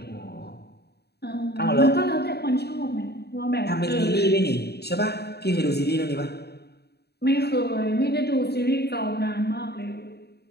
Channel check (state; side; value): late; right; 0.48 ms